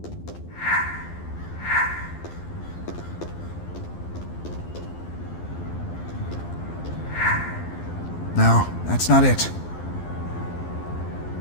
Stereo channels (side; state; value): right; late; 12 ms